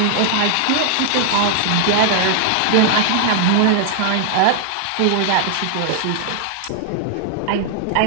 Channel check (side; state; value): both; different; correlation 0.00